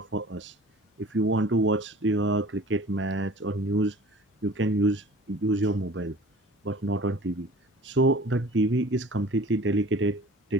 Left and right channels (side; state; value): both; normal; correlation 0.45